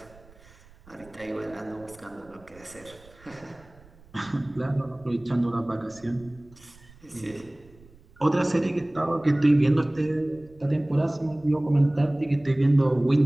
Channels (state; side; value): noise; right; rumble, 25 dB below the sound